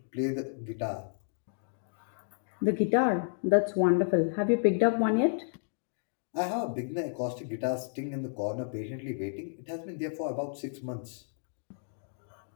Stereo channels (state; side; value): silent; right; digital silence